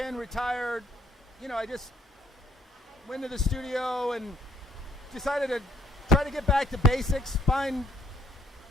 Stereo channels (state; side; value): normal; both; correlation 0.67